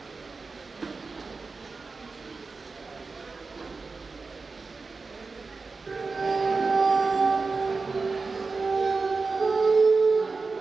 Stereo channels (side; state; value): left; quieter; 4.2 dB